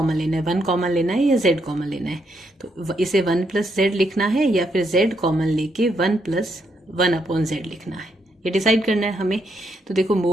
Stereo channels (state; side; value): normal; both; correlation 0.77